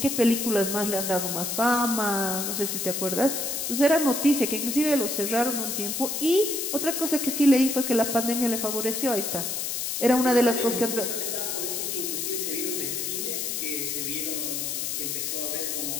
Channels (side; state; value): left; noise; hiss, 2 dB below the sound